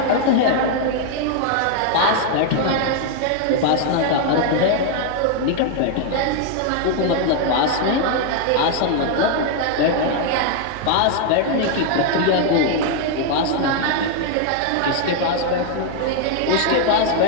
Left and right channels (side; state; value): both; different; correlation 0.00